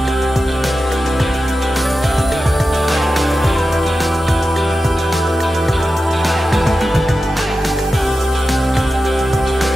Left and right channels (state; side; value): normal; both; correlation 0.92